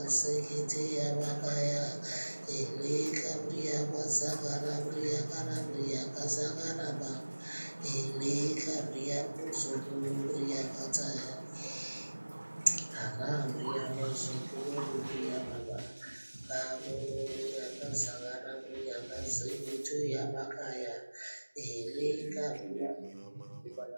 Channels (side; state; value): both; inverted; correlation -1.00